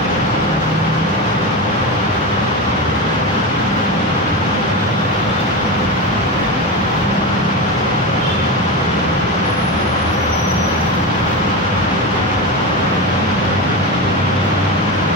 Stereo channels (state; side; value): normal; both; correlation 0.20